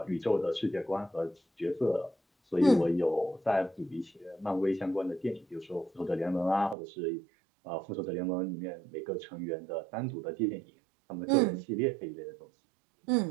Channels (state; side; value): drops out; left; at 6.8 s